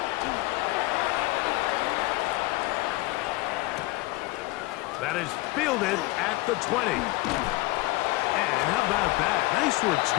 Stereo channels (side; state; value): right; quieter; 20.6 dB